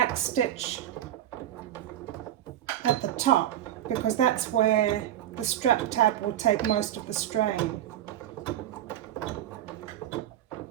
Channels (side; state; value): left; quieter; 11.9 dB